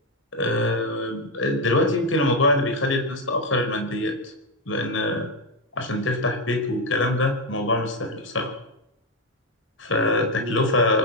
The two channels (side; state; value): both; normal; correlation 0.07